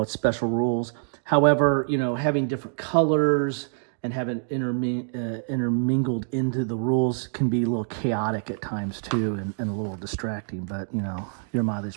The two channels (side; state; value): left; silent; digital silence